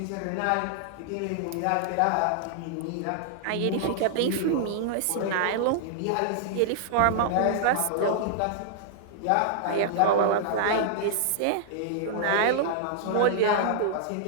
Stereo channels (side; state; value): both; different; correlation -0.01